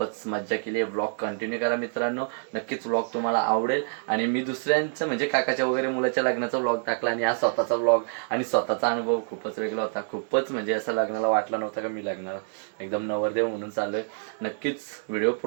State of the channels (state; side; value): silent; left; digital silence